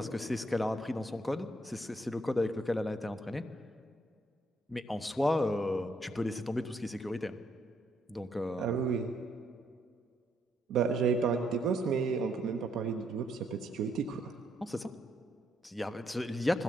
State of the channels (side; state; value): both; normal; correlation 0.73